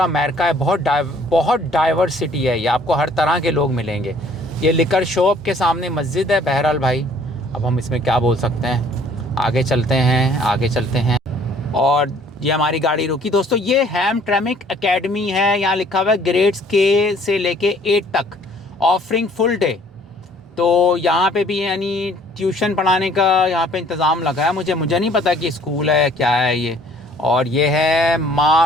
अमेरिका है, बहुत डाइवर्सिटी है। ये आपको हर तरह के लोग मिलेंगे। ये लिकर शॉप के सामने मस्जिद है। बहरहाल भाई, अब हम इसमें क्या बोल सकते हैं। आगे चलते हैं। और ये हमारी गाड़ी रुकी। दोस्तों, ये हैमट्रैमिक एकेडमी है। यहाँ लिखा हुआ है ग्रेड्स के से लेके 8 तक, ऑफरिंग फुल डे। तो यहाँ पे भी यानी ट्यूशन पढ़ाने का यहाँ पे इंतज़ाम लगा है। मुझे नहीं पता कि स्कूल है क्या है ये। और ये है माँ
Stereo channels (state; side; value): normal; both; correlation 0.57